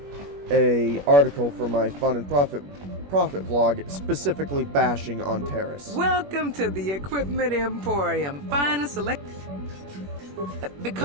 a article for my Fun and Profit vlog, specifically bashing on Terrace. Welcome to the Equipment Emporium. Finest select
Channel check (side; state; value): left; late; 21 ms